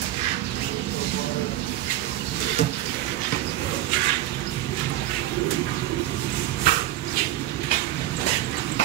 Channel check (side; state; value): left; quieter; 14.3 dB